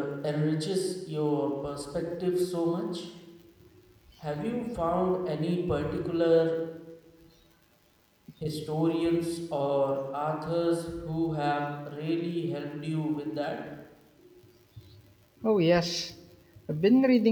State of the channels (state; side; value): identical; both; correlation 1.00